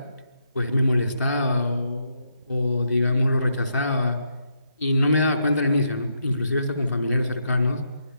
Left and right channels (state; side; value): inverted; both; correlation -0.79